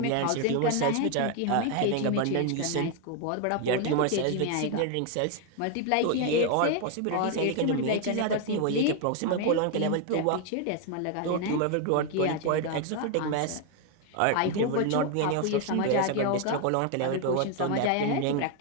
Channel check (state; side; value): different; both; correlation 0.01